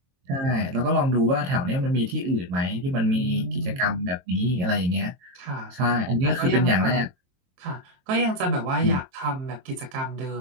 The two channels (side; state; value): left; late; 22 ms